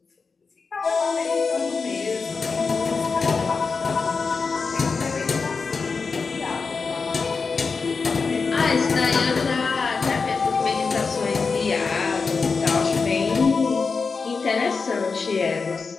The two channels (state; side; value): quieter; right; 4.8 dB